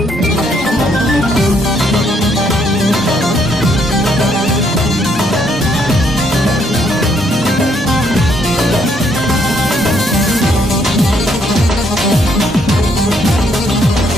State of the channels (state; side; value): normal; both; correlation 0.71